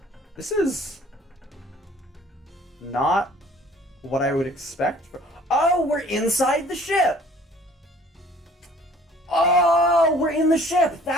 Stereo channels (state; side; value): normal; both; correlation 0.54